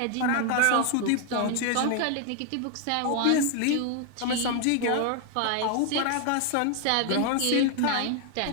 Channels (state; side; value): different; both; correlation 0.00